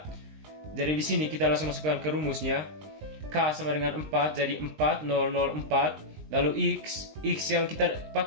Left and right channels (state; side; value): late; left; 20 ms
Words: Jadi di sini kita langsung masukkan ke rumusnya. K sama dengan 4 jadi 4004. Lalu X yang kita